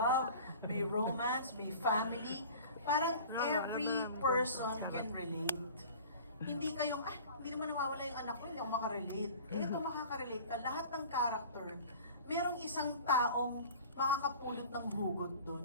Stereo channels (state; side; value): inverted; both; correlation -0.42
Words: may romance, may family. Parang every person can relate. Hindi kayong, hindi naman nawawala yung anak ko, hindi ako makarelate. Ito makakarelate ka. Lahat ng character, merong isang taong makakapulot ng hugot